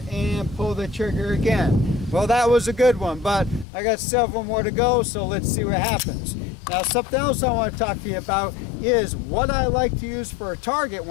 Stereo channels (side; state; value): right; drops out; at 3.7 s